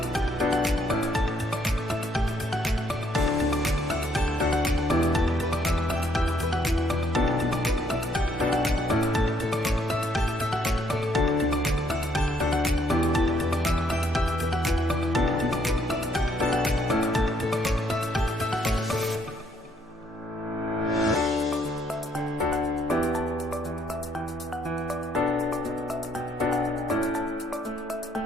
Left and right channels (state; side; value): normal; both; correlation 0.69